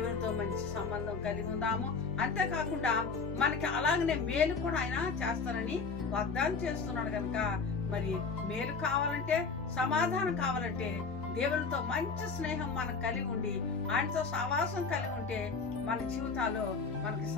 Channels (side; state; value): right; quieter; 4.8 dB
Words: మంచి సంబంధం కలిగి ఉందాము. అంతేకాకుండా మనకి అలాగనే మేలు కూడా ఆయన చేస్తానని వాగ్దానం చేస్తున్నాడు కనుక మరి మేలు కావాలంటే, సమాధానం కావాలంటే దేవునితో మంచి స్నేహం మనకు కలిగి ఉండి ఆయనతో సహవాసం కలిగి ఉంటే మన జీవితాల్లో మనకి